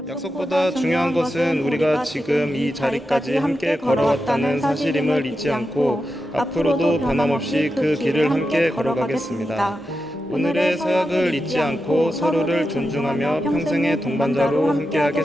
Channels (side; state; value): both; normal; correlation 0.89